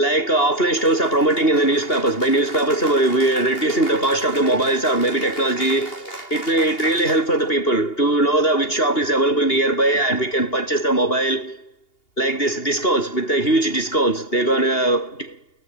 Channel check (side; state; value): right; late; 2.8 ms